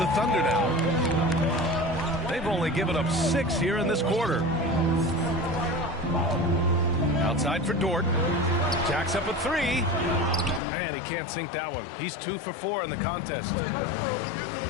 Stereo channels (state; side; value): drops out; right; at 10.6 s